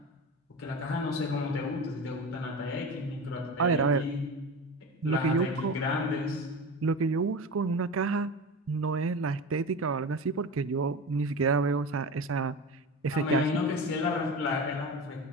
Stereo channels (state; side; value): normal; both; correlation 0.28